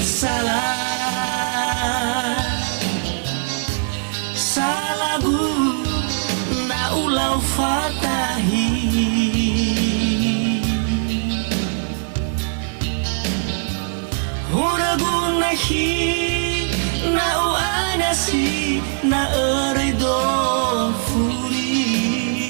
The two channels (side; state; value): left; silent; digital silence